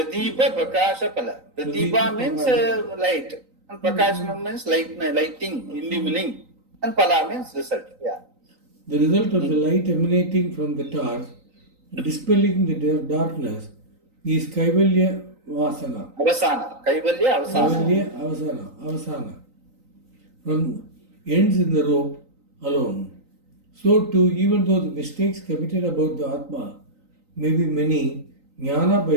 Prakasha Pala. Pradipa means light. And Prakashana means lighting, illumining. And Pala means result. Yeah. The result of the light emanating from the torch, dispelling the darkness, is Kaivalya Vasana. Avasana. Kaivalya Avasana. From ends in the rope alone. So too, even though the mistakes committed about the Atma may be many, Jnana by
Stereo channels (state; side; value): late; left; 3.9 ms